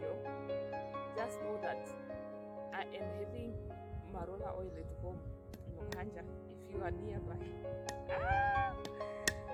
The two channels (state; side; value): identical; both; correlation 1.00